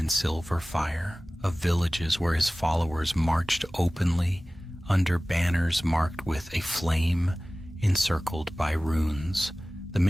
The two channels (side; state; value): both; normal; correlation 0.97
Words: silver fire, of villages where his followers marched openly under banners marked with a flame encircled by runes. The